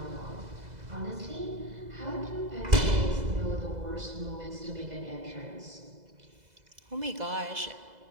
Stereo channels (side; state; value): left; late; 2.0 ms